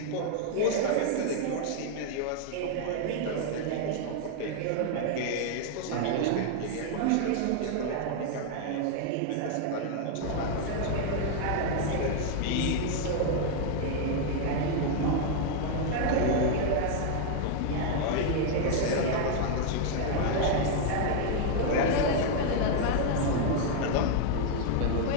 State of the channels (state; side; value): different; both; correlation 0.00